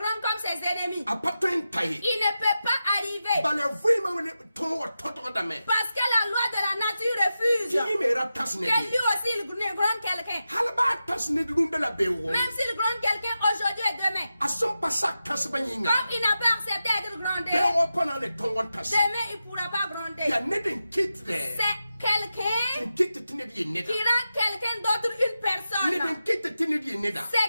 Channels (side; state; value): both; inverted; correlation -0.91